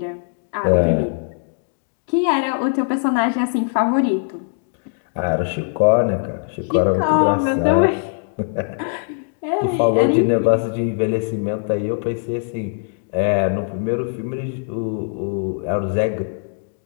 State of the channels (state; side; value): silent; right; digital silence